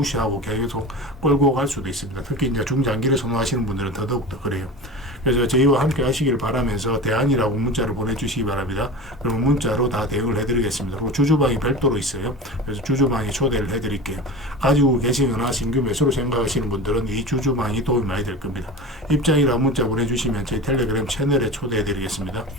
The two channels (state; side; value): normal; both; correlation 0.31